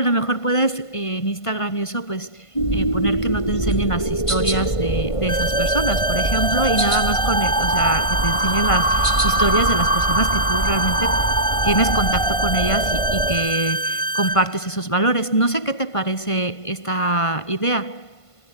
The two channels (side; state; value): right; late; 1.5 ms